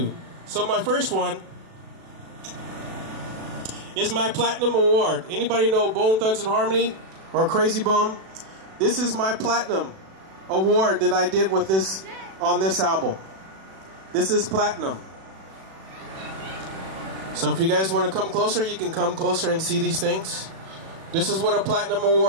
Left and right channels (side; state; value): left; late; 37 ms